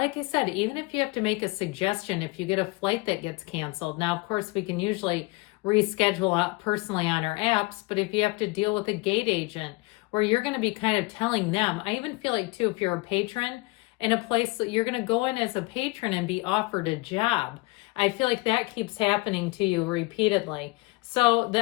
I said, even if you have to make a suggestion, if you get a flight that gets canceled. Now, of course, we can usually reschedule out personally on our apps, but if you have to deal with a gate agent where you're going to be kind of telling them, I even feel like too, if you're a patron in a place that you're going to go in as a patron and be offered a job. I feel like that keeps happening to you repeatedly. So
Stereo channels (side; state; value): right; quieter; 24.0 dB